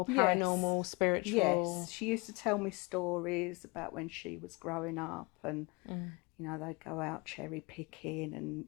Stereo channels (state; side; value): quieter; right; 27.6 dB